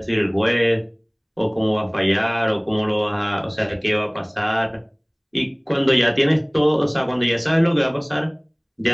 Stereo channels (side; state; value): both; identical; correlation 1.00